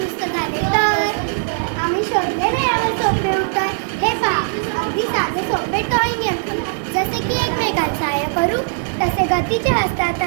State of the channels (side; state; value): left; silent; digital silence